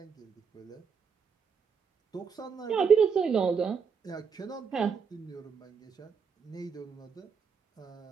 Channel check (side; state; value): left; quieter; 6.2 dB